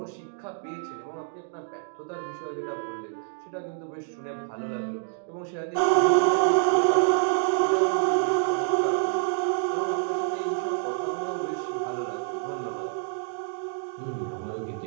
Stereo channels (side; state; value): left; silent; 60 dB below the other